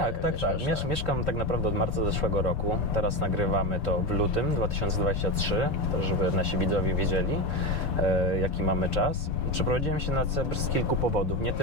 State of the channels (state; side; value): late; right; 6.8 ms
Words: Mieszkam tak naprawdę od marca zeszłego roku. Teraz nagrywamy to w lutym 2023, żeby nasi widzowie wiedzieli, jaki mamy czas. Przeprowadziłem się na Cypr z kilku powodów. Nie